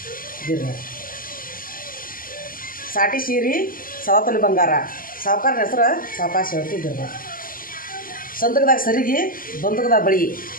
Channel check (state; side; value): late; right; 0.41 ms